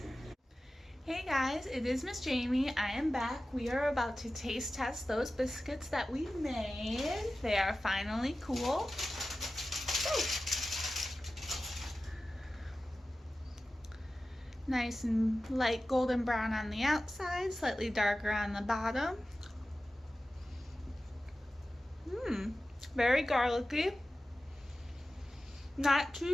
Hey guys, it is Miss Jamie. I am back. We are about to taste test those biscuits that we made. They are finally cool. Ooh. Nice and light golden brown on the outside, slightly darker on the bottom. Very garlicky. Not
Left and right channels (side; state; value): both; normal; correlation 0.95